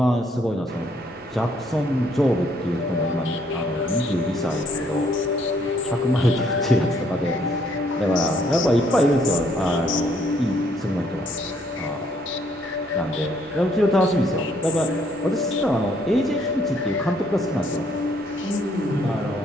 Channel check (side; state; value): both; normal; correlation 0.68